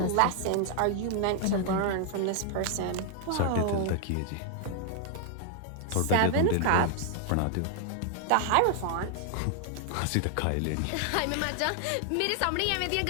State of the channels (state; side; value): different; both; correlation 0.00